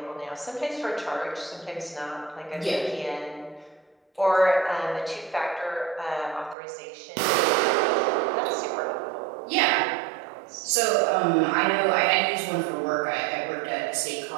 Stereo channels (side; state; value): left; drops out; at 6.6 s